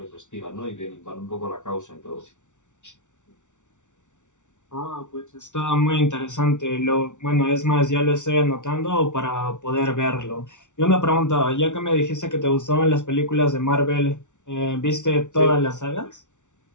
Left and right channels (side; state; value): right; late; 0.86 ms